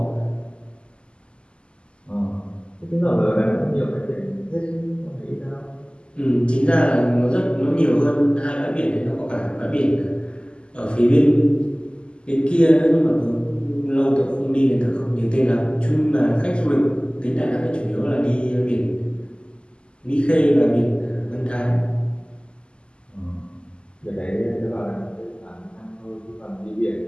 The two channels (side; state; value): right; late; 0.051 ms